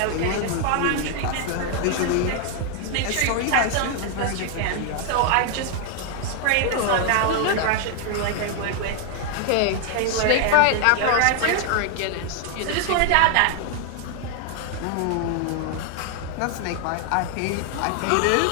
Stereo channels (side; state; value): both; different; correlation 0.00